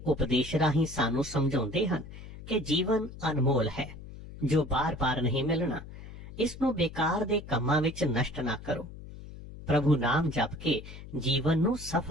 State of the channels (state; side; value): noise; left; hum, 14 dB below the sound